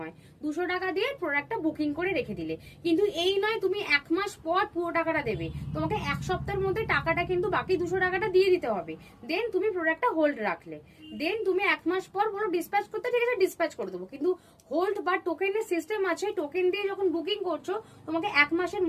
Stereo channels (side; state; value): both; identical; correlation 1.00